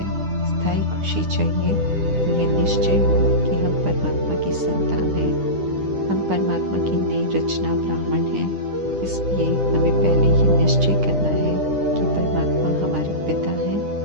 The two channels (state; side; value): late; left; 9.9 ms